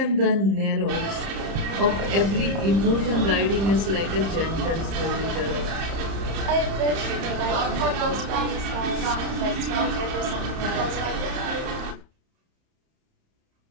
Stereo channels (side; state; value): left; late; 30 ms